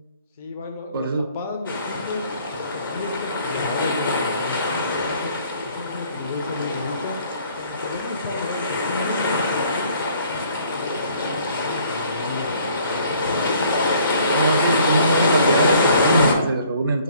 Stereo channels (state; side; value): inverted; both; correlation -0.59